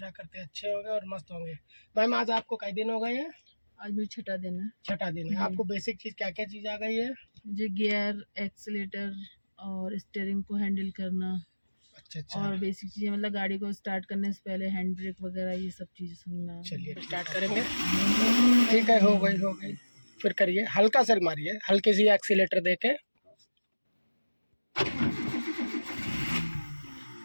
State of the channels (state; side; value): inverted; both; correlation -1.00